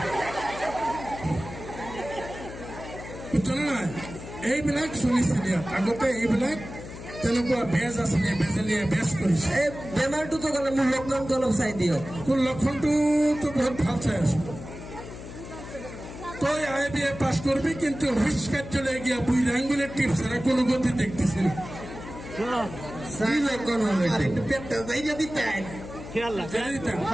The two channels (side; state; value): left; noise; hum, 12 dB below the sound